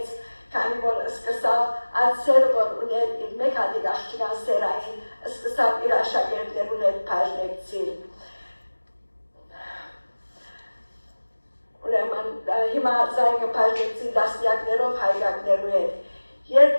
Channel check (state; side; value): inverted; both; correlation -1.00